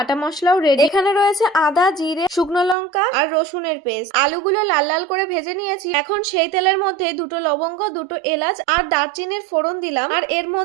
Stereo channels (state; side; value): drops out; left; at 2.8 s